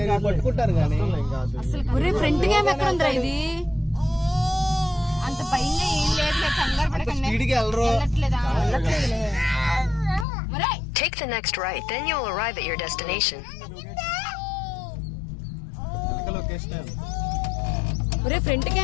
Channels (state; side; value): drops out; right; at 10.2 s